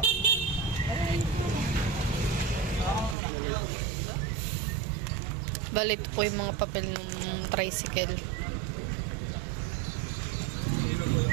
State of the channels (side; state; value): left; drops out; at 3.2 s